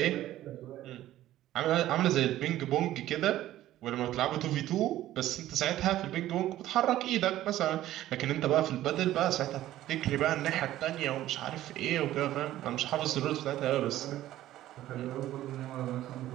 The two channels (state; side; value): quieter; left; 14.0 dB